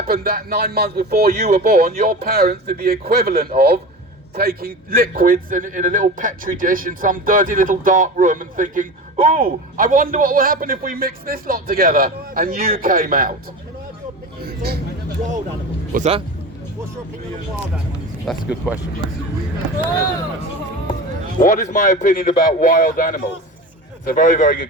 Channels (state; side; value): normal; both; correlation 0.30